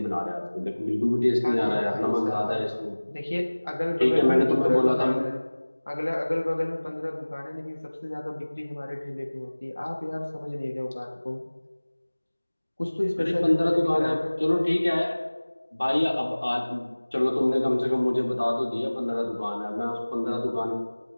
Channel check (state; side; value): inverted; both; correlation -1.00